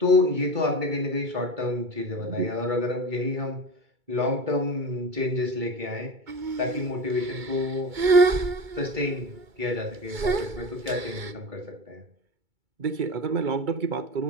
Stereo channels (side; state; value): left; late; 2.2 ms